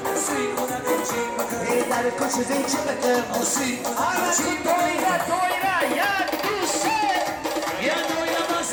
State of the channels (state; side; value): identical; both; correlation 1.00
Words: سی خودم چی بکر در کش زیچی بکر سی آره چی دویره یک دوسته یه دویره